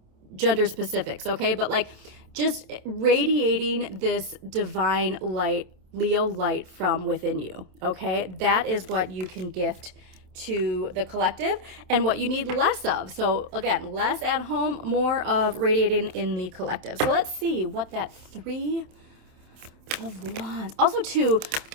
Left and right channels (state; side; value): late; left; 27 ms